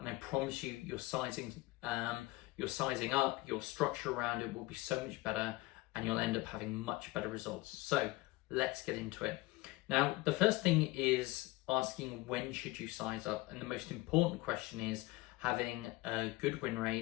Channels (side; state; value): right; quieter; 20.2 dB